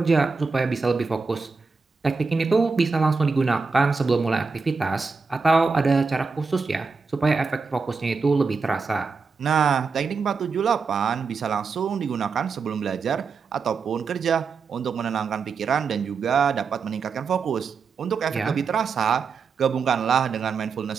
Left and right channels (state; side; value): quieter; left; 4.8 dB